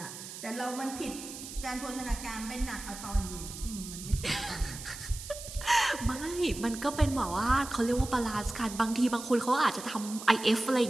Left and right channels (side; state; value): right; noise; hiss, 11 dB below the sound